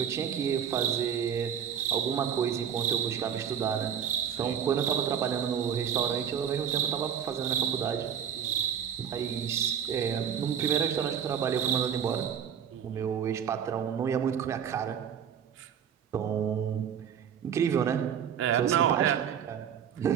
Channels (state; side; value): quieter; left; 8.5 dB